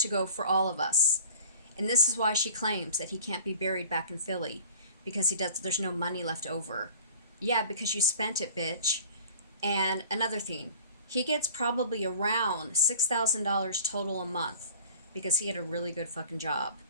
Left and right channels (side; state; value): both; inverted; correlation -0.47